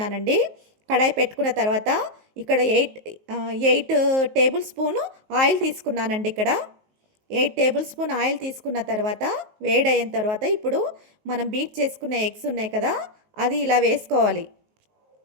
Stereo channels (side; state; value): left; late; 19 ms